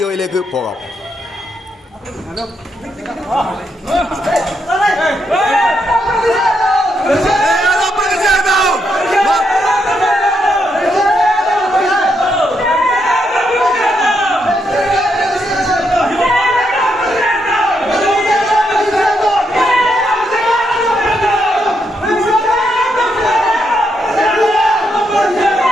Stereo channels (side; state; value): both; normal; correlation 0.79